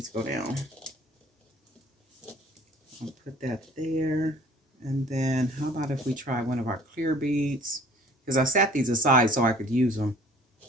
go down. I'll put that there. And then how about if we try one of our clear beads? Because I set these aside so I could use them.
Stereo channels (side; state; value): both; normal; correlation 0.52